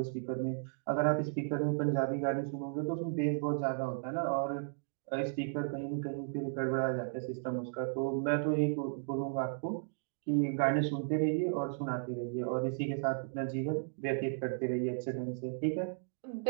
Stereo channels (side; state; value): left; silent; digital silence